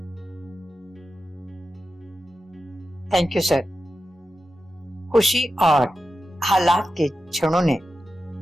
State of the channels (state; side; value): normal; both; correlation 0.91